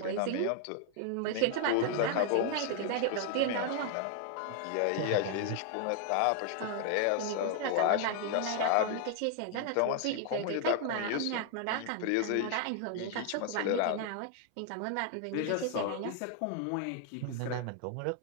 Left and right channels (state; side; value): different; both; correlation 0.00